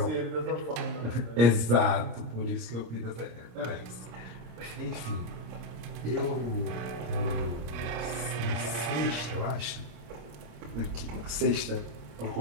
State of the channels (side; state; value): left; late; 26 ms